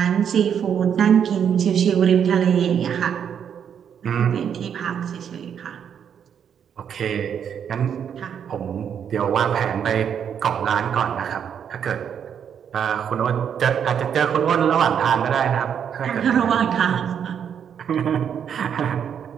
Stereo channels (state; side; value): quieter; left; 8.2 dB